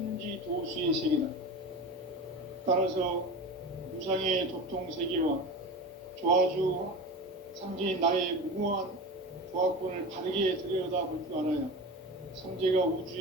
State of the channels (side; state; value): both; normal; correlation 0.29